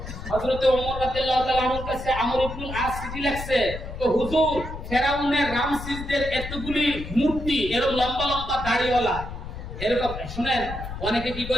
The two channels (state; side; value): noise; left; rumble, 9 dB below the sound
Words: হযরত ওমর রাদিয়াল্লাহু তাআলা আনহুর কাছে আমর ইবনুল আস চিঠি লিখছে, তো হুজুর ফেরাউনের রামসিসদের এতগুলি মূর্তি, এরকম লম্বা লম্বা দাড়িওয়ালা, এরকম শুনেন অনেকে কি